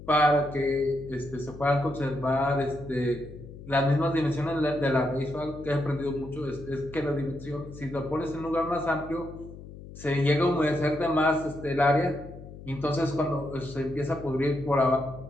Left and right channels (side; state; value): left; noise; hum, 15 dB below the sound